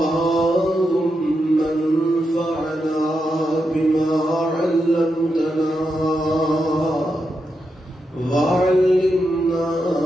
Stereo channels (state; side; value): normal; both; correlation 0.85